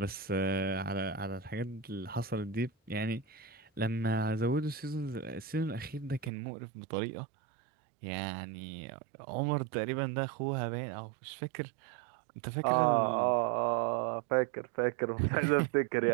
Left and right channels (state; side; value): drops out; left; at 6.3 s